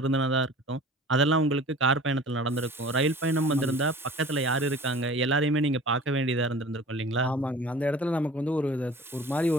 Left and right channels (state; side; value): normal; both; correlation 0.44